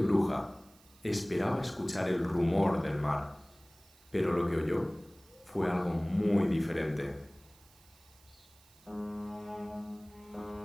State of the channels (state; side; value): noise; right; hiss, 27 dB below the sound